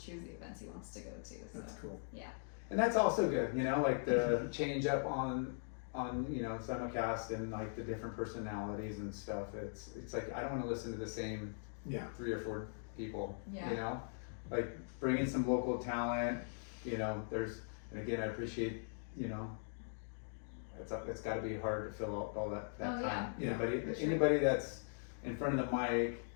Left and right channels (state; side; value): silent; right; digital silence